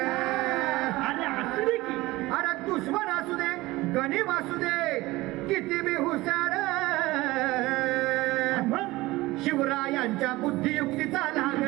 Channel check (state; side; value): quieter; left; 19.6 dB